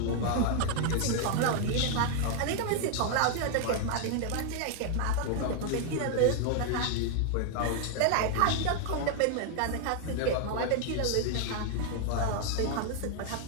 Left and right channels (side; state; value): both; different; correlation 0.00